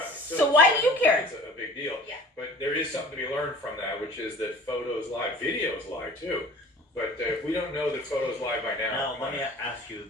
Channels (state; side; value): normal; both; correlation 0.44